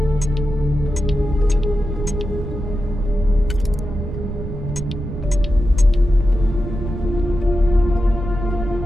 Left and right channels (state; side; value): noise; right; rumble, 6 dB below the sound